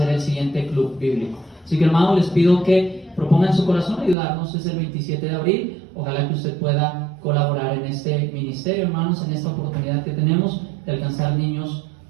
el siguiente club bíblico. Así que, hermanos, les pido que propongan en su corazón ayudarnos. Es el 27 de abril. Ojalá que usted pueda colaborar en este ministerio, hermanos, en esta oportunidad que tenemos de alcanzar niños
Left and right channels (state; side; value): drops out; left; at 4.2 s